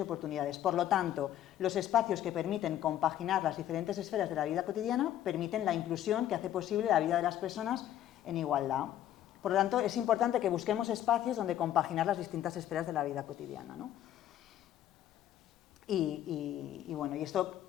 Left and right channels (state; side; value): quieter; right; 11.8 dB